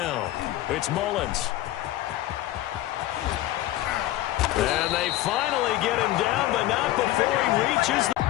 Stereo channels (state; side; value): quieter; right; 15.3 dB